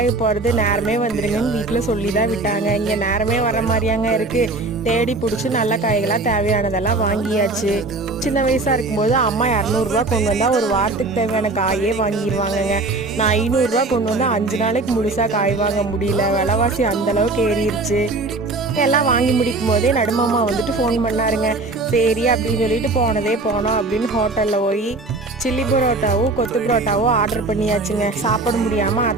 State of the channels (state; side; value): quieter; left; 3.3 dB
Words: போகிறது நேரமே வந்துருங்கன்னு வீட்டில் சொல்லி தான் விட்டாங்க. இங்கே நேரமே வர மாதிரியாங்க இருக்குது. தேடி பிடிச்சி நல்ல காய்களாக தேவையானதெல்லாம் வாங்கியாச்சு. சின்ன வயசாக இருக்கும்போது அம்மா 200 கொண்டு வந்தால் ஒரு வாரத்துக்கு தேவையான காயே வாங்கிடுவாங்கங்க. நான் 500 கொண்டு வந்தால் 5 நாளைக்கு முழுசாக காய் வாங்க முடியல. விலைவாசி அந்தளவுக்கு ஏறிடுச்சு. எல்லாம் வாங்கி முடிக்கும் போதே நடுமாமா வந்துட்டு ஃபோன் பண்ணாருங்க. சரி அப்படின்னு சொல்லிட்டு போனோம் அப்படின்னு ஹோட்டலில் போய் சில்லி பரோட்டாவும் கொத்து பரோட்டாவும் ஆர்டர் பண்ணியாச்சுங்க. சாப்பிட முடியாமல்